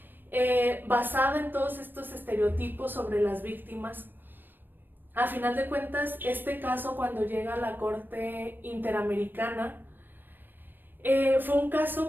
basada en todos estos estereotipos sobre las víctimas. A final de cuentas, este caso, cuando llega a la Corte Interamericana, fue un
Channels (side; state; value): left; late; 0.093 ms